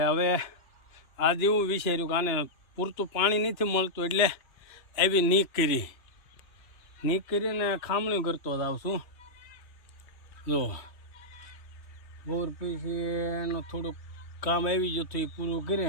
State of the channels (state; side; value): late; right; 2.9 ms